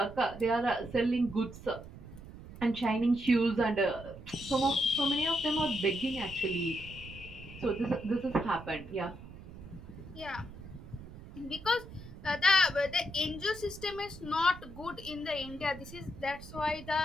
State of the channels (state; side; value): noise; right; rumble, 15 dB below the sound